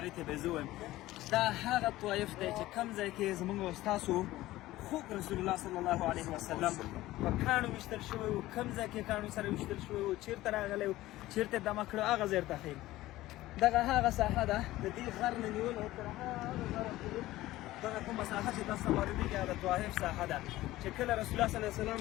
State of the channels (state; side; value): quieter; right; 16.6 dB